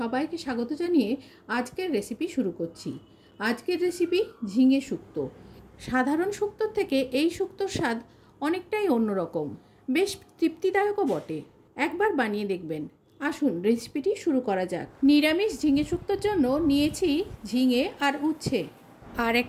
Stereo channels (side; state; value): both; identical; correlation 1.00